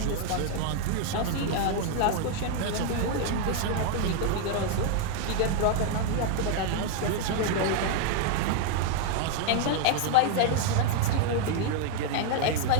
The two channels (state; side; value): different; both; correlation 0.00